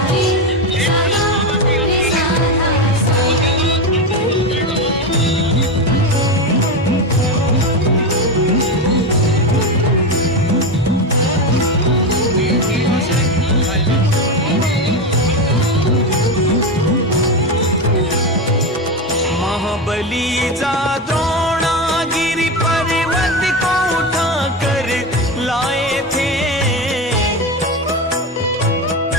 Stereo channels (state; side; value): normal; both; correlation 0.16